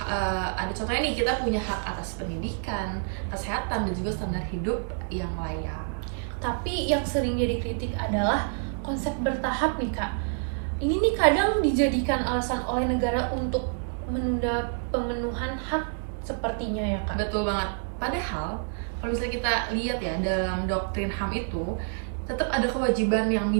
ada contohnya nih, kita punya hak atas pendidikan, kesehatan dan juga standar hidup yang layak. Tapi yang sering jadi kritik adalah konsep bertahap nih Kak. Ini nih kadang dijadikan alasan oleh negara untuk menunda pemenuhan hak sepertinya ya Kak. Betul banget. Padahal kalau misalnya kita lihat ya dalam doktrin HAM itu tetap ada kewajiban yang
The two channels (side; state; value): left; silent; 60 dB below the other